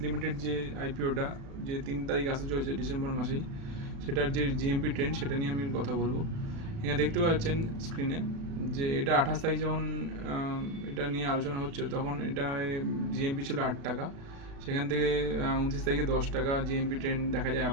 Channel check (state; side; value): late; left; 36 ms